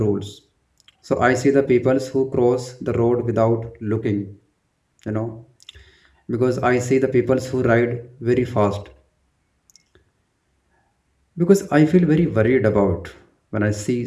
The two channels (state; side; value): identical; both; correlation 1.00